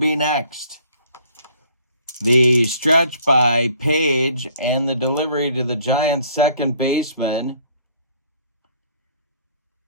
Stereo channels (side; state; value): both; inverted; correlation -0.59